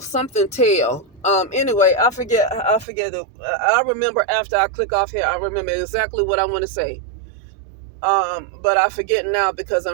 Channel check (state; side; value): drops out; left; at 2.9 s